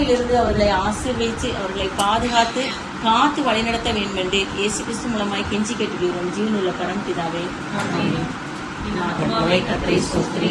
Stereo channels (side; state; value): both; identical; correlation 1.00